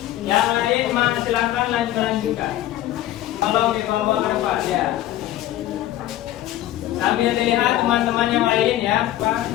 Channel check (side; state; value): right; quieter; 13.9 dB